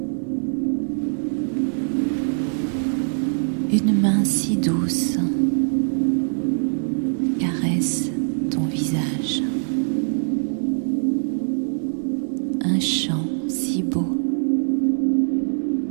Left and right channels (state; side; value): silent; left; digital silence